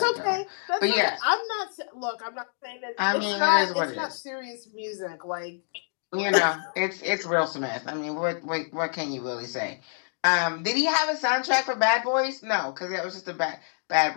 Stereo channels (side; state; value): right; silent; digital silence